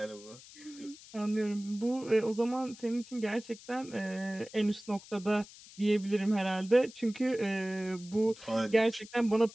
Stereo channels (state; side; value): noise; left; hiss, 19 dB below the sound